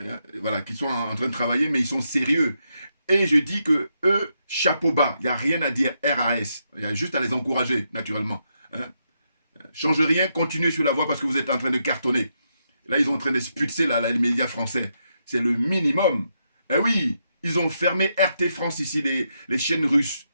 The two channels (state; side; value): inverted; both; correlation -0.81